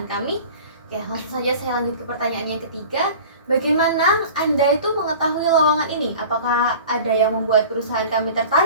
kami. Oke, langsung saja saya lanjut ke pertanyaan yang ketiga. Bagaimana Anda itu mengetahui lowongan ini? Apakah ada yang membuat perusahaan kami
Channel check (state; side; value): inverted; both; correlation -0.40